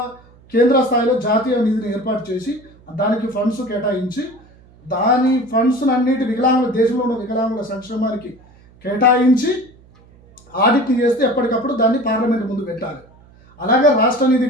కేంద్ర స్థాయిలో జాతీయ నిధిని ఏర్పాటు చేసి దానికి ఫండ్స్ కేటాయించి దాని ఫండ్స్ అన్నిటి వికలాంగుల దేశంలో ఉన్న వికలాంగుల సంక్షేమానికి కేటాయించి ఆడిట్ చేస్తే ఎప్పటికప్పుడు దాన్ని పార్లమెంట్ ముందు పెట్టాలి. అలాగే రాష్ట్ర నిధి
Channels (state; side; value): noise; right; hum, 27 dB below the sound